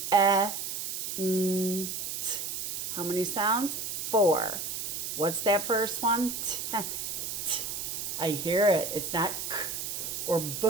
n, t. How many sounds? 4. What's that first one? T, t. I hear it. It's not k or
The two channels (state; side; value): noise; right; hiss, 4 dB below the sound